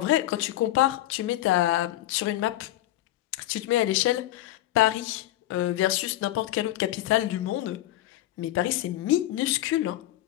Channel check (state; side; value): quieter; right; 14.8 dB